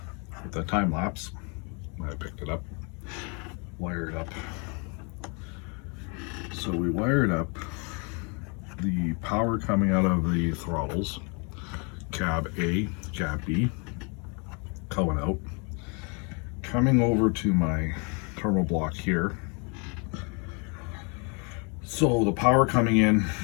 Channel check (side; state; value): right; quieter; 34.2 dB